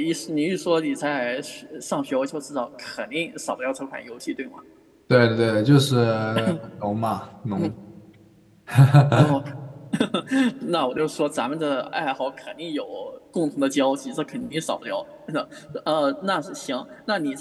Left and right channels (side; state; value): both; identical; correlation 1.00